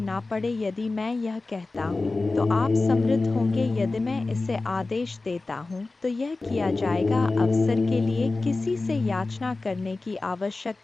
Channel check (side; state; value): right; quieter; 3.4 dB